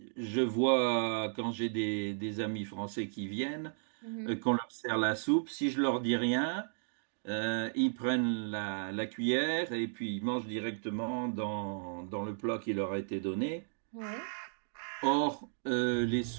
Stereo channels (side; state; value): left; silent; digital silence